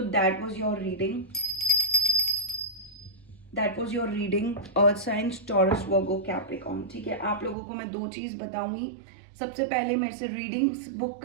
that was your reading, earth signs, Taurus, Virgo, Capricorn, ठीक है। आप लोगों को मैं 2 चीज़ बताऊंगी। सबसे पहले मेरे से रीडिंग्स बुक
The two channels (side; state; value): left; drops out; at 7.6 s